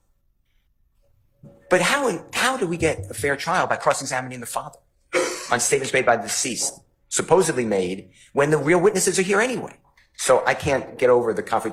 But how do we get a fair trial by cross-examining the father on statements made by the deceased, supposedly made, when the real witnesses are here anyway? So I can't get over the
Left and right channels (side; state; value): both; identical; correlation 1.00